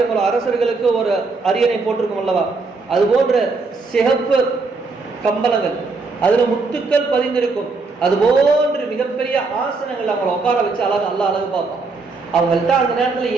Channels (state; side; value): quieter; left; 4.0 dB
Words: போல அரசர்களுக்கு ஒரு அரியணை போட்டிருக்கும் அல்லவா, அது போன்ற சிகப்பு கம்பளங்கள், அதுல முத்துக்கள் பதிந்திருக்கும், அது போன்று மிகப்பெரிய ஆசனங்கள் அவங்களை உட்கார வச்சு அழகு பார்ப்பான். அவங்கள்ட்ட அந்த நேரத்துல